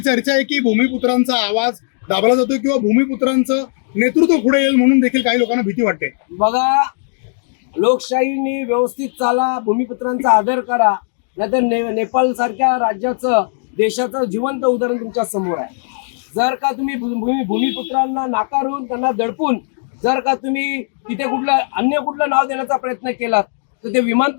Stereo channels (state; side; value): silent; right; digital silence